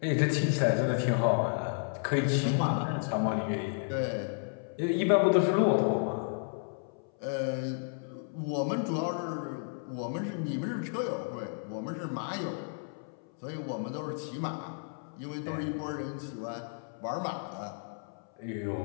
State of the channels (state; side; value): silent; right; 56 dB below the other